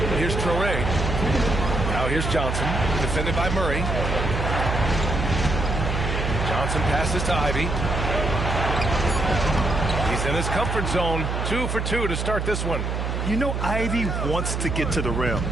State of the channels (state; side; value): noise; right; hum, 2 dB below the sound